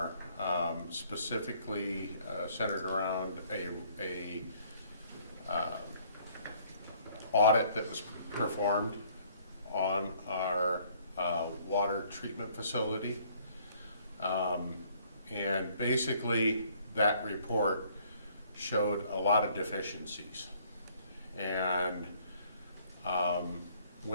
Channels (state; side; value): inverted; both; correlation -0.62